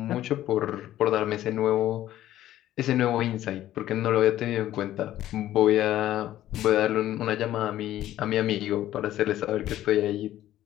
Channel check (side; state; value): right; quieter; 13.3 dB